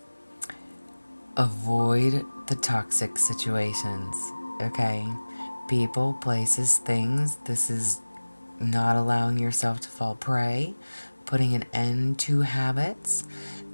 avoid the toxic situations, okay? People, places, things. This is not allowing yourself to fall prey, putting an end to habits,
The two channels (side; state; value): both; inverted; correlation -1.00